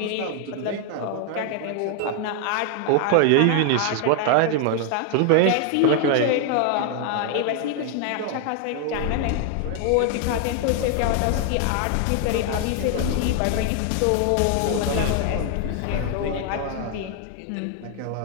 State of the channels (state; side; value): different; both; correlation 0.00